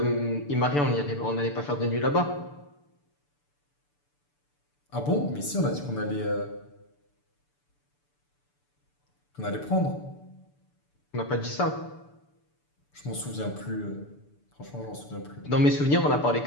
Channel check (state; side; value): late; right; 6.9 ms